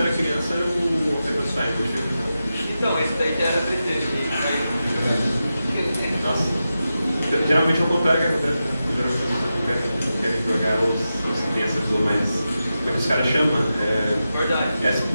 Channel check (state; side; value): inverted; both; correlation -0.91